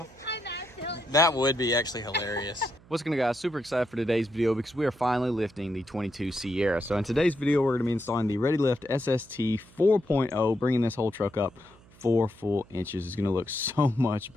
I know. That would be actually hilarious. What's going on, guys? Super excited for today's video because we are finally lifting the 22 Sierra. So in today's video, we're going to be installing the ReadyLift SST 4.0, bringing this whole truck up 4 full inches. It's going to look so much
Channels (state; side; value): noise; right; hum, 26 dB below the sound